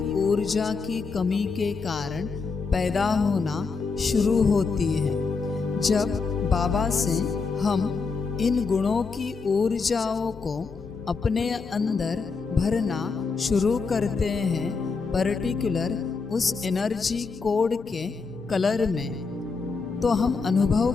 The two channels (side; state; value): right; quieter; 4.6 dB